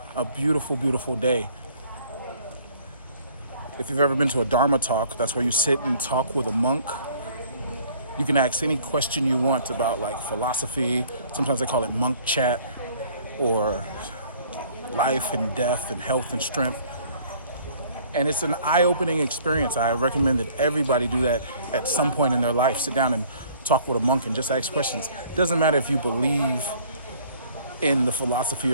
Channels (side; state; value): both; inverted; correlation -0.56